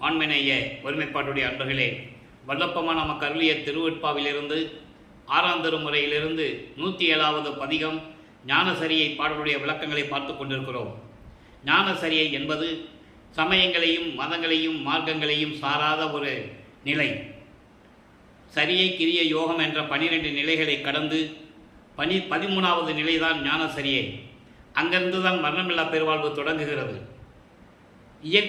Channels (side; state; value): both; identical; correlation 1.00